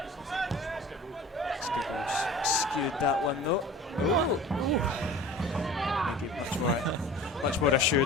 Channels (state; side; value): normal; both; correlation 0.41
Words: Scougall's skewed that one though. Maybe much more